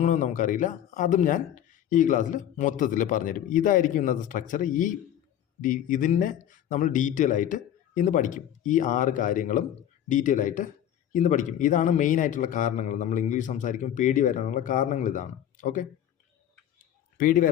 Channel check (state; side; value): quieter; right; 10.8 dB